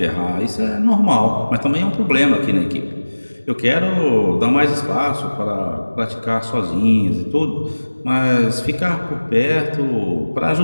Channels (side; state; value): both; inverted; correlation -1.00